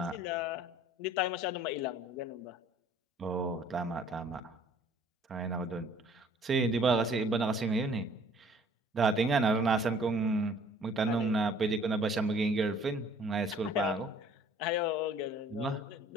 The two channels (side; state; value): both; normal; correlation 0.55